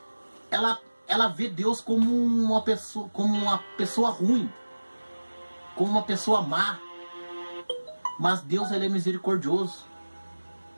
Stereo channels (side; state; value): both; inverted; correlation -1.00